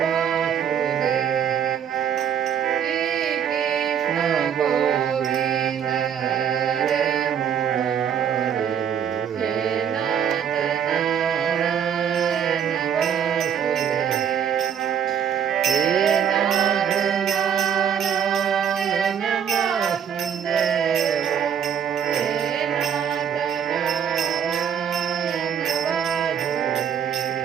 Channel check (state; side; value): quieter; left; 8.3 dB